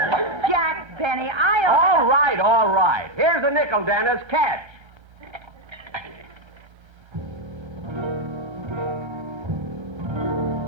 Jack Benny, All right. Here's a nickel, Dennis. Catch.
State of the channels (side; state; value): left; late; 1.6 ms